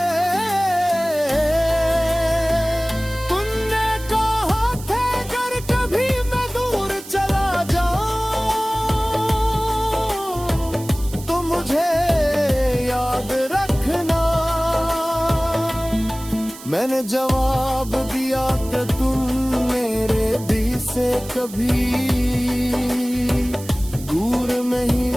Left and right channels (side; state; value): right; noise; hiss, 16 dB below the sound